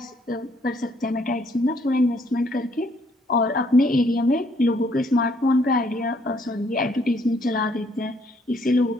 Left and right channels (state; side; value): normal; both; correlation 0.67